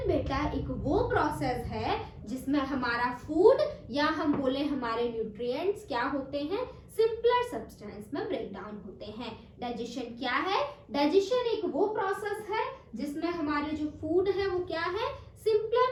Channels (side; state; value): both; identical; correlation 1.00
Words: बेटा एक वो प्रोसेस है जिसमें हमारा फूड या हम बोले हमारे न्यूट्रिएंट्स क्या होते हैं? सिंपलर सब्सटेंस में ब्रेक डाउन होते हैं। डाइजेशन क्या है? डाइजेशन एक वो प्रोसेस है जिसमें हमारे जो फूड है वो क्या है?